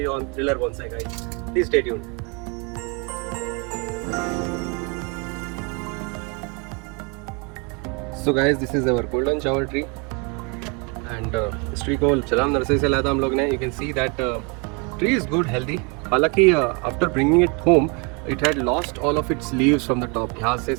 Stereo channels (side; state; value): left; quieter; 32.4 dB